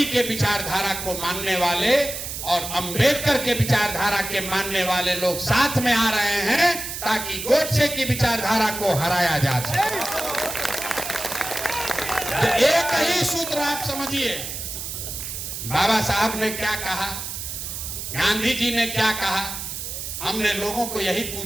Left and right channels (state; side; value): noise; right; hiss, 7 dB below the sound